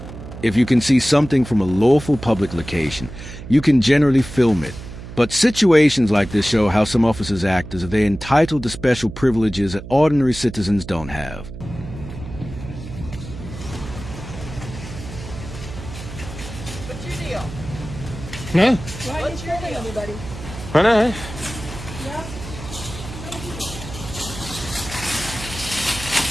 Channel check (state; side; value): noise; right; hum, 12 dB below the sound